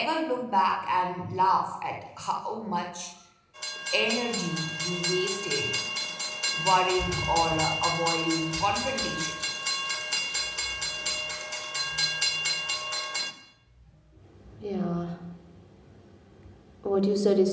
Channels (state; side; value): identical; both; correlation 1.00